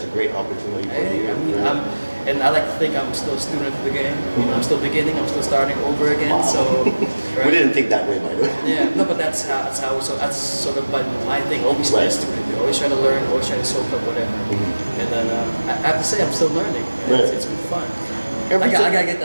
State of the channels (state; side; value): inverted; both; correlation -1.00